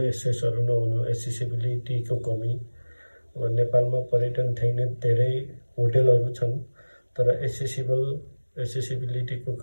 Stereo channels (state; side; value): inverted; both; correlation -1.00